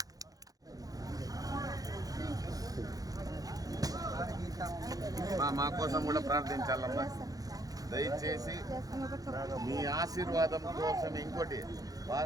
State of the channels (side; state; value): left; late; 0.18 ms